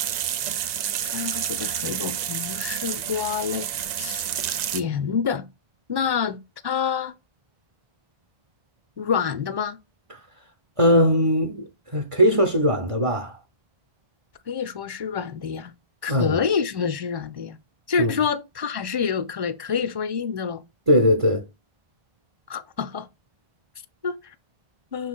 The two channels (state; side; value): late; left; 1.9 ms